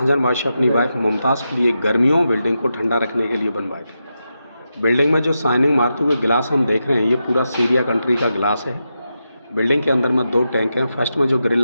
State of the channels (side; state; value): both; inverted; correlation -0.88